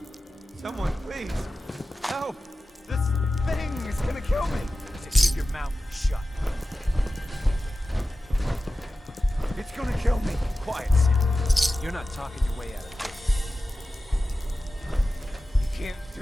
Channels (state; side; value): normal; both; correlation 0.94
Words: Someone, please. Help! This thing is gonna kill me. I said keep your mouth shut. It's gonna kill me. Quiet, Sim. You're not talking your way out of this. You can't